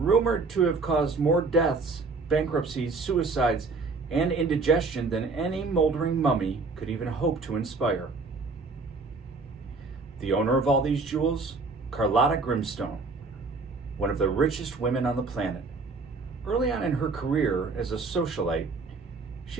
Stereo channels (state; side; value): quieter; left; 4.0 dB